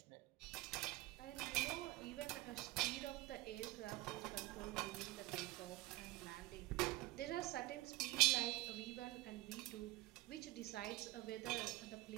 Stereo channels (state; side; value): quieter; left; 19.4 dB